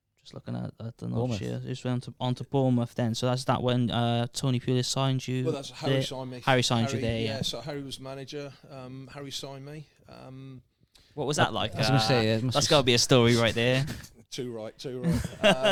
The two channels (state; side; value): identical; both; correlation 1.00